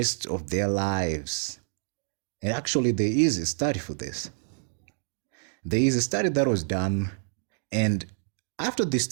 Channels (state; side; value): silent; left; 59 dB below the other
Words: of their lives. And actually, there is a study for this. There is a study that was done, and after the